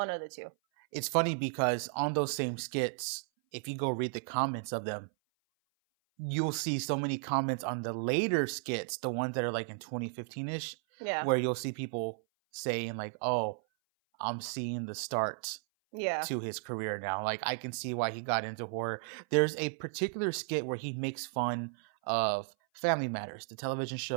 of the two. It's funny because on those same skits, if you go read the comments of them, you'll see so many comments on the later skits, the ones that are like in 2015-ish, where you'll see people saying like, oh, I'm seeing the start to his career now. Like, I can see why he got into horror. There's a particular skit where he makes fun of Family Matters, the television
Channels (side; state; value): left; silent; 55 dB below the other